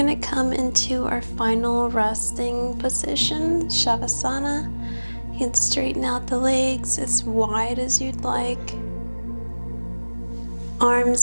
come into our final resting position, Shavasana. You can straighten out the legs as wide as you'd like.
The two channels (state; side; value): inverted; both; correlation -1.00